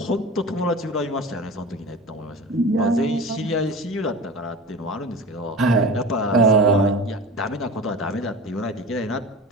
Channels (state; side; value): normal; both; correlation 0.33